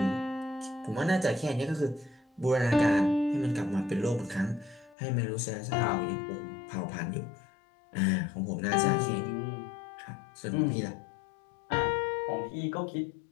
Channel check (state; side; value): drops out; right; at 5.0 s